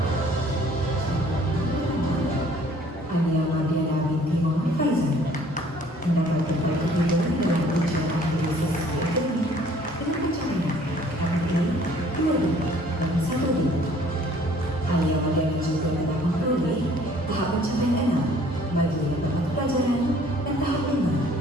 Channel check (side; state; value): both; normal; correlation 0.56